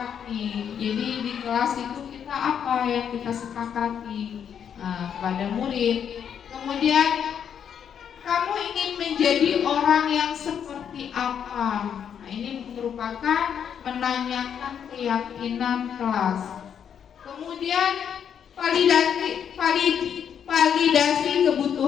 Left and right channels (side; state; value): right; quieter; 8.2 dB